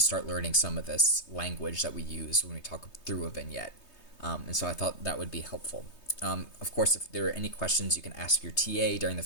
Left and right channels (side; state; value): right; late; 3.2 ms